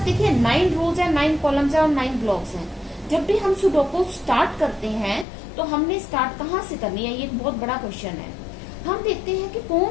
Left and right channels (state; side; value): drops out; right; at 5.2 s